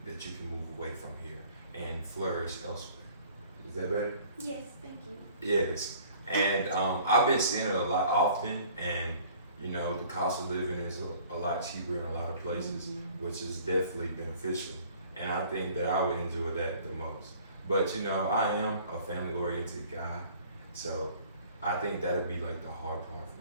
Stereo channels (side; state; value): both; inverted; correlation -0.53